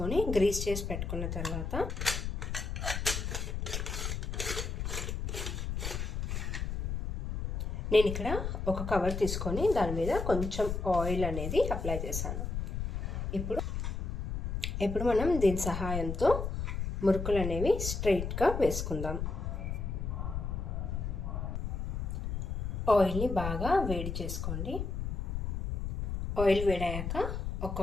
గ్రీస్ చేసి పెట్టుకున్న తర్వాత నేను ఇక్కడ ఒక కవర్ తీసుకొని దాని మీద కొంచెం ఆయిల్ అనేది అప్లై చేశాను. ఇప్పుడు మనం దీని సహాయంతో మురుకులు అనేవి స్ట్రైట్గా వేసుకుందాం. ఆయిల్ని బాగా వేడి చేసుకోండి. ఆయిల్ వేడయ్యాక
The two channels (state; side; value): noise; left; rumble, 3 dB below the sound